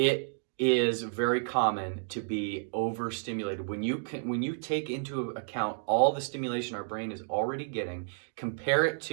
is very common to be overstimulated. When you take into account all the stimulation our brain is already getting, compare it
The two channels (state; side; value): silent; left; digital silence